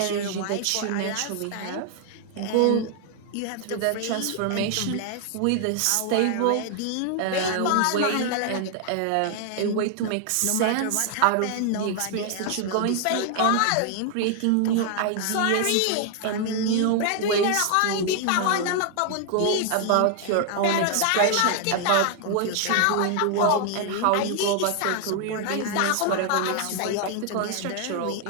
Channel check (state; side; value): different; both; correlation 0.00